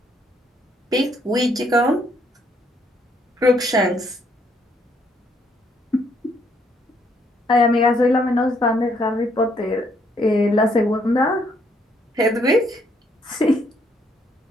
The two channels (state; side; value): normal; both; correlation 0.70